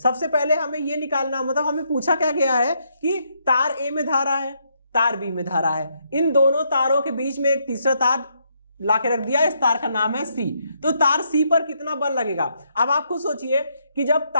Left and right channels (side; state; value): both; inverted; correlation -0.75